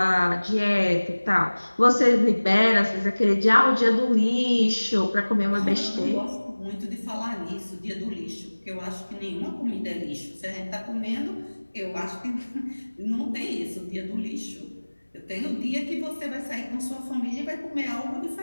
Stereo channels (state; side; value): inverted; both; correlation -1.00